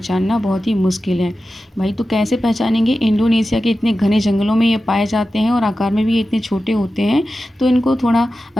बहुत ही मुश्किल है भाई। तो कैसे पहचानेंगे? इंडोनेशिया के इतने घने जंगलों में ये पाए जाते हैं और आकार में भी ये इतने छोटे होते हैं, तो इनको थोड़ा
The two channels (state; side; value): normal; both; correlation 0.93